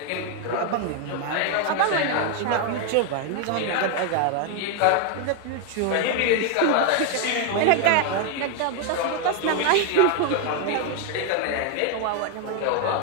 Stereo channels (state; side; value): different; both; correlation 0.01